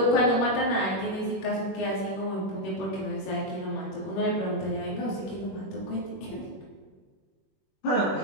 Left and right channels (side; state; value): right; late; 21 ms